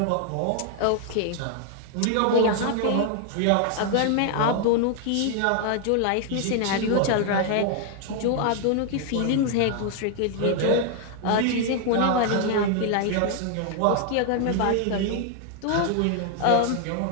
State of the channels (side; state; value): both; different; correlation 0.00